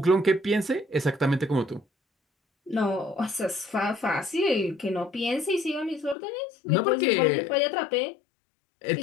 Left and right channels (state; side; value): drops out; right; at 6.2 s